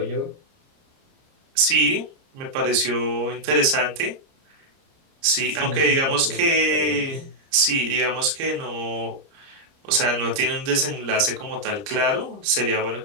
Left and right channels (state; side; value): late; left; 30 ms